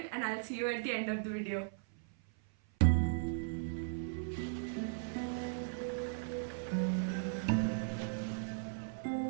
and I'll see you at the end of the video.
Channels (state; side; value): silent; left; 53 dB below the other